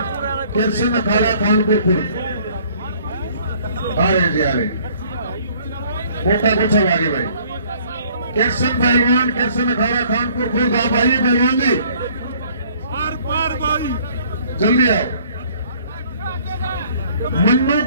केसन अखाड़ा खानपुर खुर्द आ रहे जी, आ रहे। मोटा कोच साहब आगे भाई। केसन पहलवान, केसन अखाड़ा खानपुर खुर्द, आप आइए पहलवान जी, जल्दी आओ। मन्नू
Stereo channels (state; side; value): inverted; both; correlation -0.57